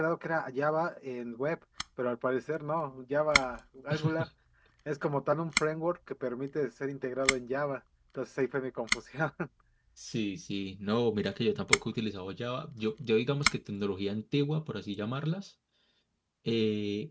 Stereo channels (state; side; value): identical; both; correlation 1.00